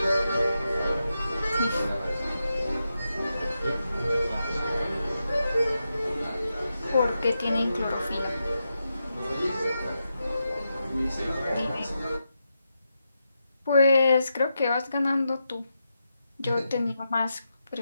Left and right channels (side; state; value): both; inverted; correlation -0.86